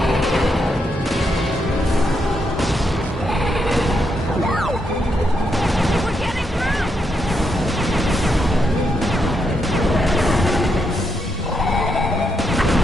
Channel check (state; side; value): normal; both; correlation 0.80